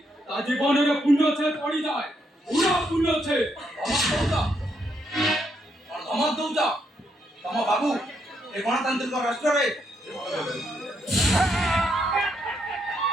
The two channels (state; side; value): normal; both; correlation 0.77